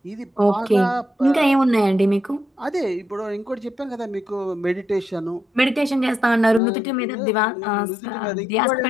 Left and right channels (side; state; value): right; drops out; at 6.6 s